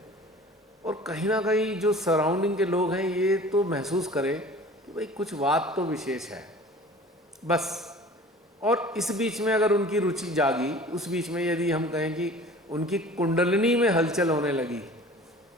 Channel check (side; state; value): both; normal; correlation 0.44